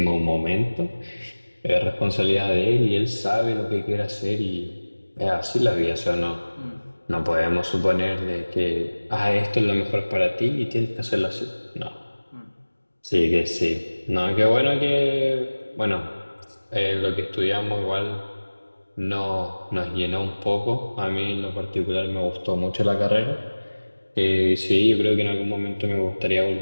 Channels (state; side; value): inverted; both; correlation -1.00